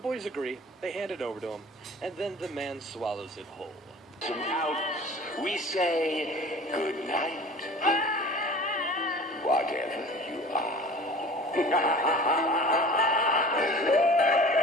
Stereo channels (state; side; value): normal; both; correlation 0.42